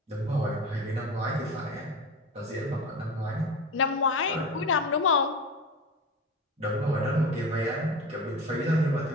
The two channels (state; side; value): normal; both; correlation 0.30